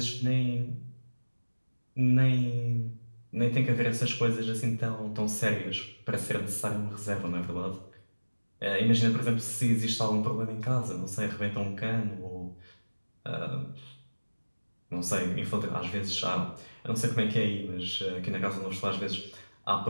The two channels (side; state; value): both; inverted; correlation -1.00